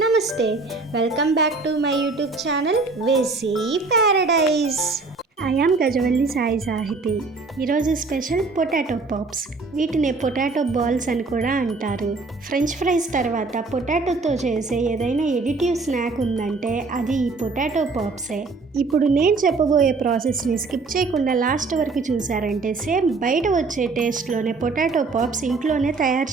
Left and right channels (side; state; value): left; quieter; 3.9 dB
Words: నమస్తే welcome back to my YouTube channel వేసీ paradise. I am Gajavalli Sai Sahiti. ఈరోజు special potato pops. వీటిని potato balls అని కూడా అంటారు. ఫ్రెంచ్ ఫ్రైస్ తర్వాత పొటాటోతో చేసే ఏదైనా ఎడిటివ్ స్నాక్ ఉందంటే అది ఈ పొటాటో పాప్సే. ఇప్పుడు నేను చెప్పబోయే ప్రాసెస్ని స్కిప్ చేయకుండా లాస్ట్ వరకు చూసారంటే సేమ్ బయట వచ్చే టేస్ట్లోనే పొటాటో పాప్స్ ఇంట్లోనే